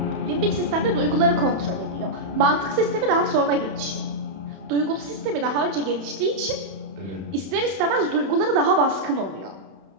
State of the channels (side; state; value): left; late; 31 ms